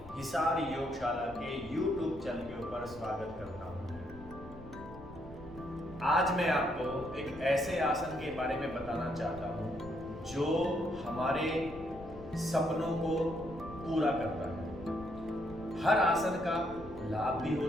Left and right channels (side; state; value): left; noise; rumble, 18 dB below the sound